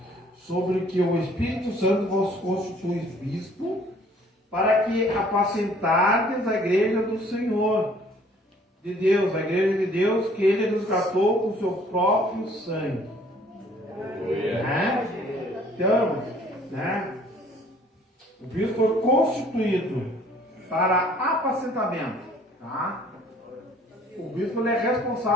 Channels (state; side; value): normal; both; correlation 0.57